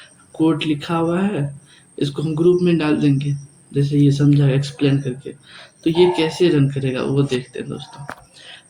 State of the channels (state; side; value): identical; both; correlation 1.00